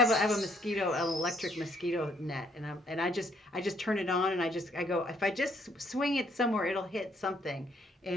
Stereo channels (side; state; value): both; normal; correlation 0.67